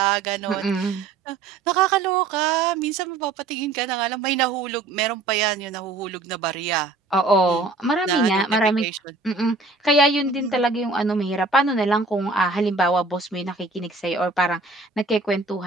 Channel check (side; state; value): left; quieter; 3.7 dB